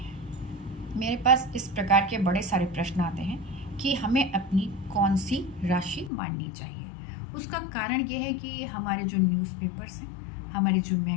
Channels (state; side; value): drops out; right; at 6.1 s